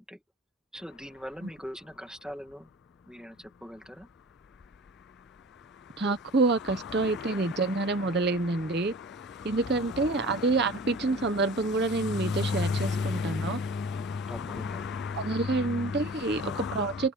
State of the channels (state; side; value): normal; both; correlation 0.42